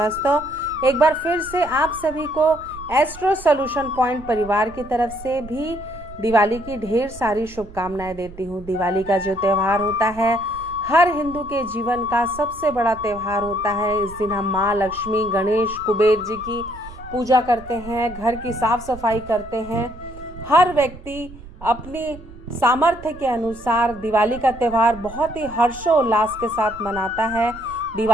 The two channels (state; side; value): noise; right; rumble, 17 dB below the sound